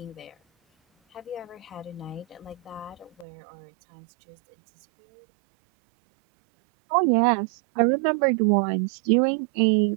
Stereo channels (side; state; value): left; drops out; at 3.2 s